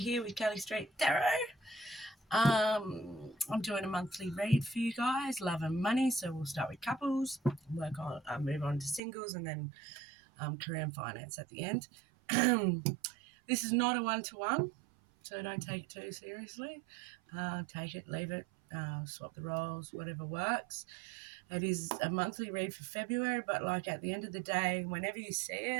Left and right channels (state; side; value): drops out; left; at 9.0 s